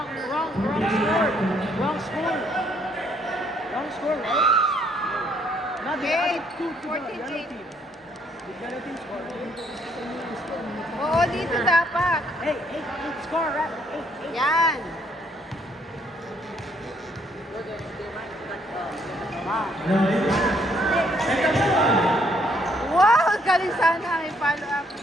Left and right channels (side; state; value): both; normal; correlation 0.68